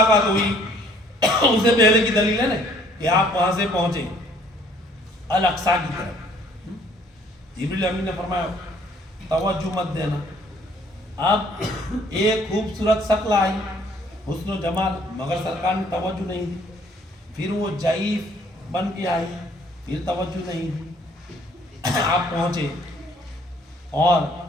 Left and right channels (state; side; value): normal; both; correlation 0.60